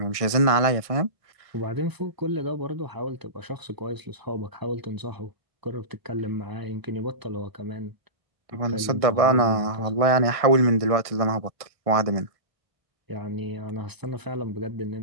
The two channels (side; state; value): left; late; 1.5 ms